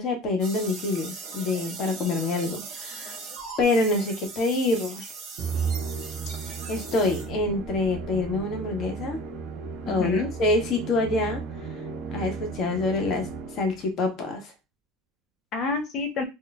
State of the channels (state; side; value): normal; both; correlation 0.40